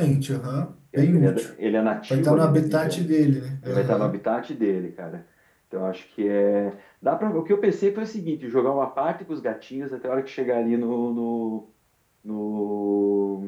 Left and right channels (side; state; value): both; identical; correlation 1.00